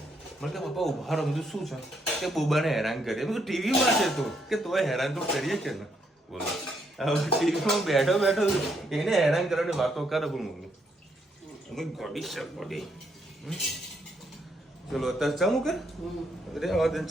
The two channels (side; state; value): both; normal; correlation 0.74